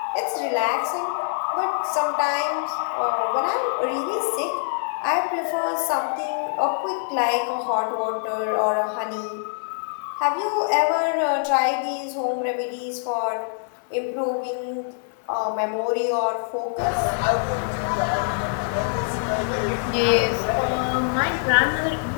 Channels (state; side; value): silent; right; digital silence